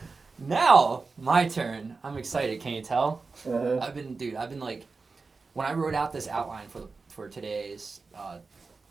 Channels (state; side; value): quieter; left; 4.2 dB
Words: now my turn. I'm excited. Can you tell? I've been like, when I wrote out this outline for today's